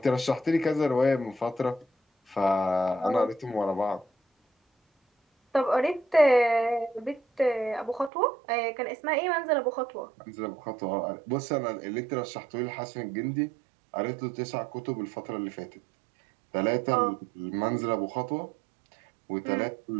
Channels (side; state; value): left; drops out; at 8.1 s